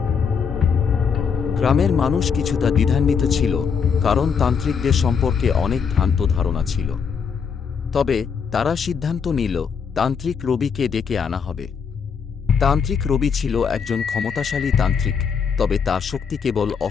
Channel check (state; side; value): quieter; right; 6.3 dB